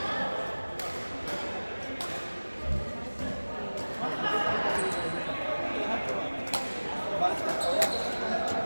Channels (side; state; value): both; inverted; correlation -1.00